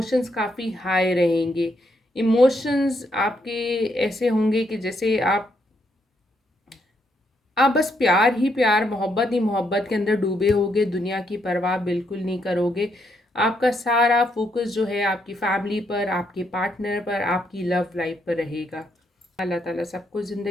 काफ़ी हाई रहेंगे। इमोशंस आपके ऐसे होंगे कि जैसे आप बस प्यार ही प्यार, मोहब्बत ही मोहब्बत के अंदर डूबे होगे, दुनिया की परवाह बिल्कुल नहीं करोगे। आपका सारा फोकस जो है आपकी फैमिली पर, आपके पार्टनर पर, आपकी लव लाइफ पर रहेगा। अल्लाह ताला सबको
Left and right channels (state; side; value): normal; both; correlation 0.76